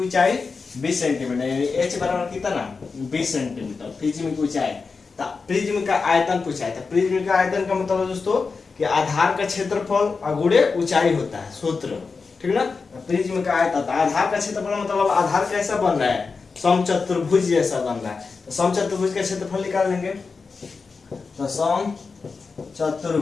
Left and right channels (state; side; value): quieter; right; 4.7 dB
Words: 20 सेंटीमीटर, यानी h बराबर कितना, 20 सेंटीमीटर प्रिज्म की ऊंचाई। तो प्रिज्म का आयतन पूछा है। तो प्रिज्म का आयतन का मतलब है दोस्तों कि आधार का क्षेत्रफल गुणे ऊंचाई होता है, सूत्र, ठीक ना। प्रिज्म का आयतन, आधार का क्षेत्रफल मतलब आधार कैसा बन रहा है, समचतुर्भुज जैसा बन रहा है। तो समचतुर्भुज का क्षेत्रफल निकाल लेंगे। तो